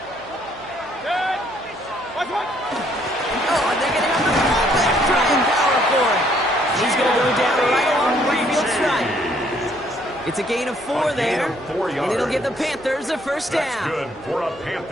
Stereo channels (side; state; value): right; noise; hum, 26 dB below the sound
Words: Oh, and they're getting on the fullback, trying power for it. He's going to go down right along the field stripe. It's a gain of 4 there, and it'll give the Panthers a first down. That's good for a